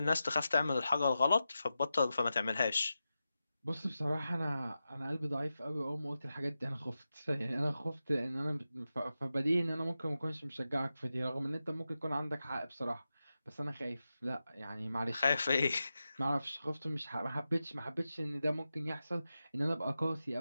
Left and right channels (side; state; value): both; inverted; correlation -0.91